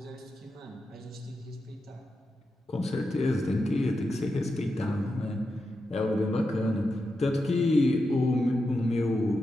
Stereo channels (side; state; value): both; normal; correlation 0.88